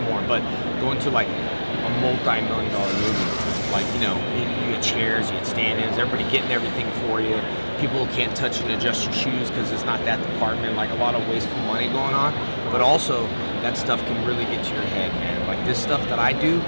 more, but going to like a multi-million-dollar movie, like, you know, you get chairs, you get stand-ins, everybody getting everything for you. People can't touch and adjust your shoes because it's not that department, like a lot of wasteful money going on. But also, that stuff can really get to your head, man. Like this stuff that I do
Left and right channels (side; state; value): both; inverted; correlation -1.00